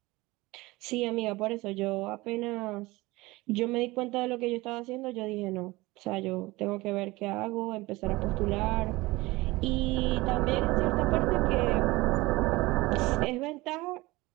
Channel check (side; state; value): left; quieter; 21.0 dB